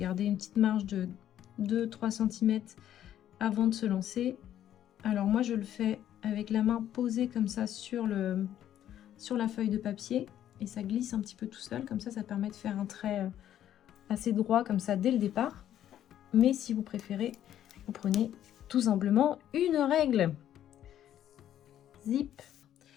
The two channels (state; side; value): quieter; right; 11.2 dB